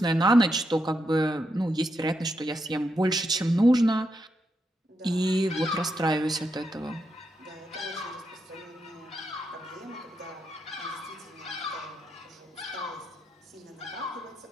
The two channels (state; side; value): normal; both; correlation 0.82